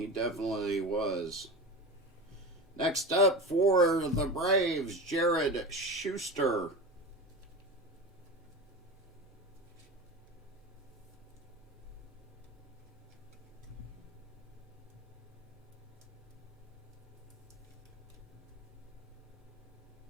definitely was. Next up for the Braves, Jared Schuster.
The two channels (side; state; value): both; normal; correlation 0.27